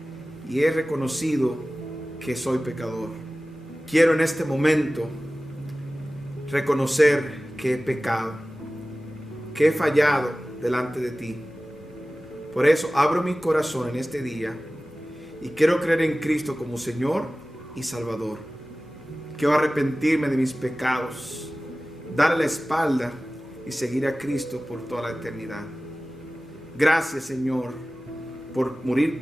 y he reconocido que soy pecador. Quiero en este momento reconocer que he pecado, que he fallado delante de ti. Por eso abro mi corazón en este día y quiero creer en Cristo como Señor y Salvador. Quiero arrepentirme de mis pecados, darle la espalda y seguir a Cristo por toda la eternidad. Gracias, Señor, por morir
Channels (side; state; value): both; normal; correlation 0.97